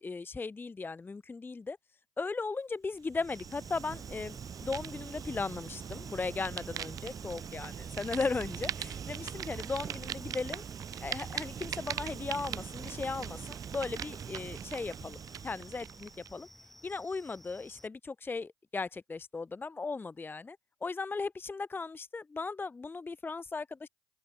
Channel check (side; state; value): both; normal; correlation 0.74